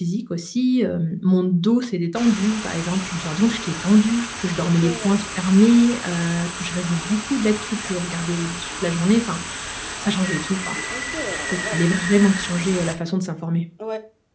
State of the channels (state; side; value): identical; both; correlation 1.00